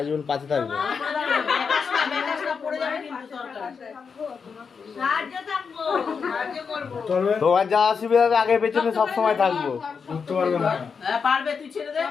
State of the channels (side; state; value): right; quieter; 5.8 dB